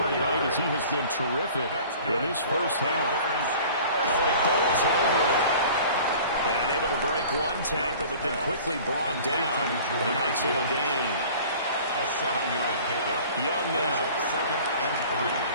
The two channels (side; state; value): both; inverted; correlation -0.45